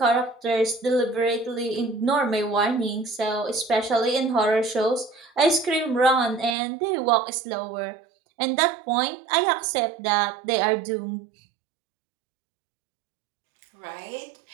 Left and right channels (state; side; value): drops out; left; at 6.6 s